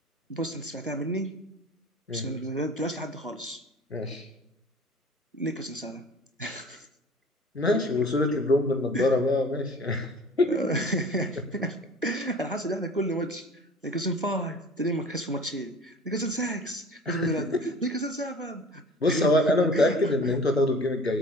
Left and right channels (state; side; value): normal; both; correlation 0.44